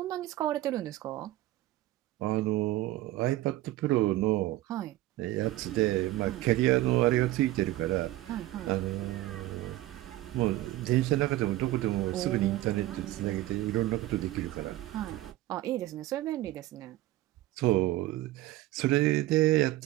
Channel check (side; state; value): left; quieter; 16.3 dB